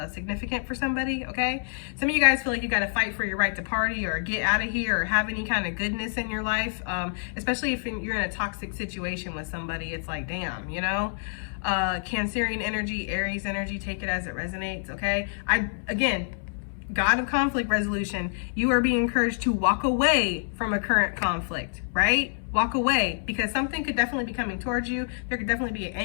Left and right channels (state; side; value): silent; right; 60 dB below the other